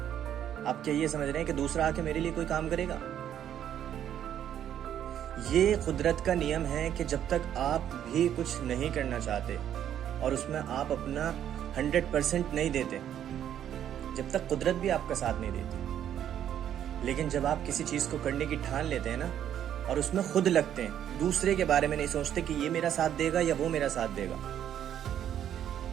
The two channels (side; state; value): left; quieter; 10.2 dB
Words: आप क्या ये समझ रहे हैं कि दूसरा आके मेरे लिए कोई काम करेगा? ये कुदरत का नियम है कि जब तक आप भी कुछ नहीं करना चाहते और उसमें आप अपना 100% नहीं देते, जब तक कुदरत भी आपका साथ नहीं देती। लेकिन जब आप किसी चीज को करने की ठान लेते हैं ना, और उसमें खुद लगते हैं, दूसरे के बारे में नहीं सोचते कि ये मेरा साथ देगा या वो मेरा साथ देगा।